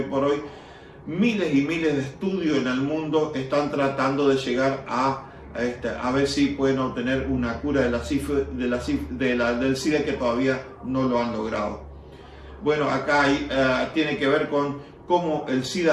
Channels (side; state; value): both; identical; correlation 1.00